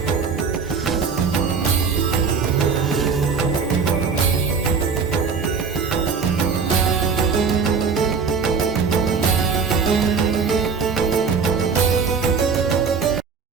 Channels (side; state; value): left; quieter; 5.5 dB